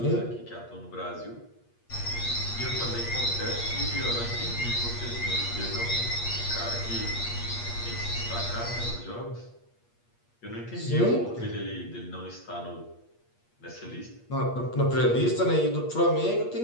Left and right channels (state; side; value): late; right; 8.5 ms